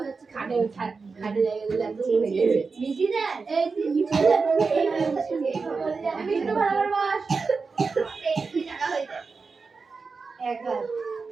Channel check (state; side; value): quieter; left; 4.6 dB